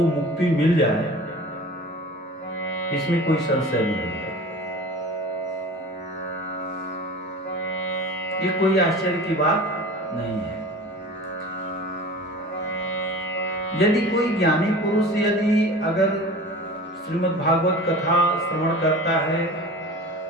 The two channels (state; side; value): normal; both; correlation 0.38